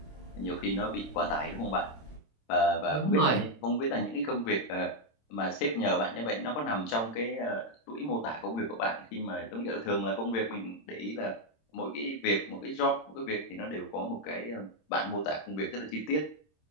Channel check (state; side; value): late; right; 26 ms